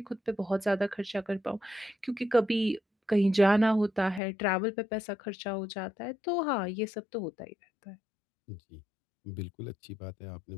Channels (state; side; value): drops out; right; at 4.2 s